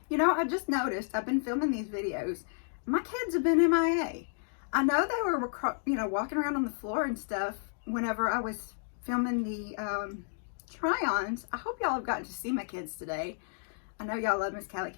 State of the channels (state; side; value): silent; right; digital silence